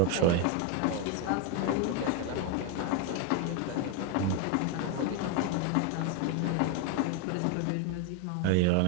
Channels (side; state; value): both; different; correlation 0.01